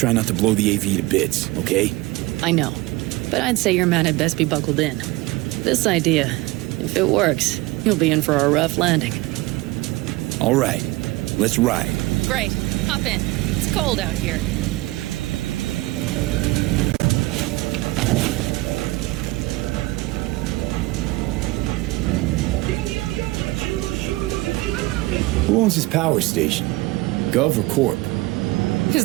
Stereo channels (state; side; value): quieter; left; 20.9 dB